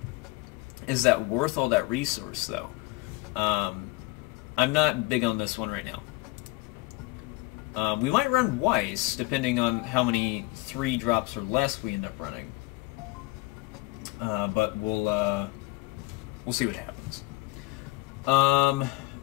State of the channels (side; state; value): right; quieter; 21.9 dB